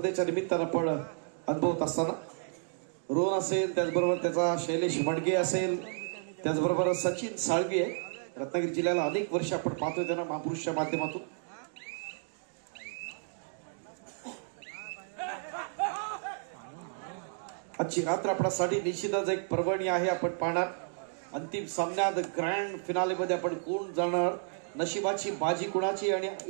निमित्तानं आपण अनुभवत असताना रोहन असेल, त्याचबरोबर त्याचा शैलेश वडगे असेल, त्याचबरोबर सचिन साळवी आहे. रत्नागिरी जिल्ह्याला अनेक वर्ष आपण पाहतोय त्यांना महापुरुषच्या माध्यमातून. आजची रात्र आपल्यासाठी निश्चितच एक पर्वणी आहे. आपण पाहणार अंतिम सामन्यात ग्रँड फिनालेमध्ये आपण कोण जाणार, नशिबाची बाजी कुणाची आणि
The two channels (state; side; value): silent; left; digital silence